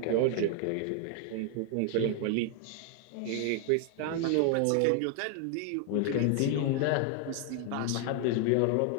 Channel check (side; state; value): both; different; correlation 0.00